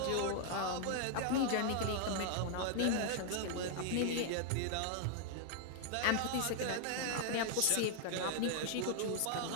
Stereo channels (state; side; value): different; both; correlation -0.01